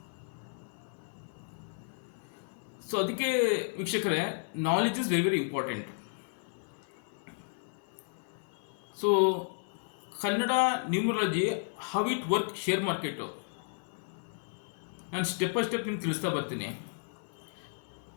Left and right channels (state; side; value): silent; right; 56 dB below the other